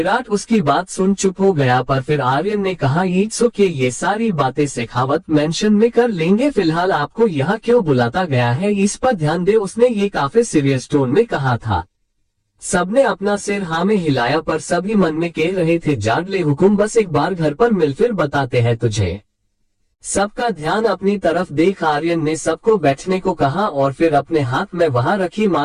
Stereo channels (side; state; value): both; identical; correlation 1.00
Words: उसकी बात सुन चुप हो गया, पर फिर आर्यन ने कहा, इट्स ओके, ये सारी बातें शेखावत मेंशन में कर लेंगे, फिलहाल आपको यहाँ क्यों बुलाता गया है इस पर ध्यान दे। उसने ये काफी सीरियस टोन में कहा था। सबने अपना सिर हाँ में हिलाया, पर सभी मन में कह रहे थे, जान ले हुकुम, बस एक बार घर पर मिल, फिर बताते हैं तुझे। सबका ध्यान अपनी तरफ देख आर्यन ने सबको बैठने को कहा और फिर अपने हाथ में वहां रखी